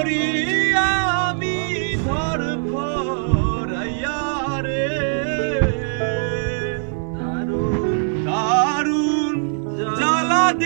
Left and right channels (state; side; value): silent; left; digital silence